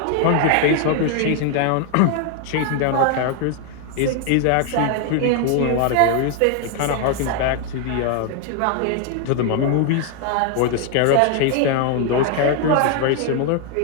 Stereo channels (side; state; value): both; different; correlation 0.00